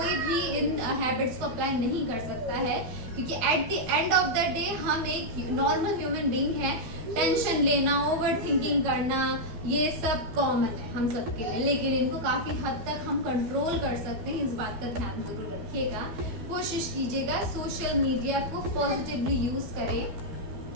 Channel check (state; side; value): late; left; 12 ms